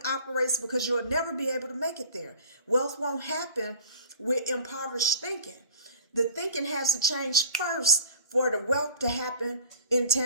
operates, because you'll never be able to make it there. Wealth won't happen with impoverished thinking. The thinking has to change first for the wealth to happen in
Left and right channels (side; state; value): both; inverted; correlation -0.43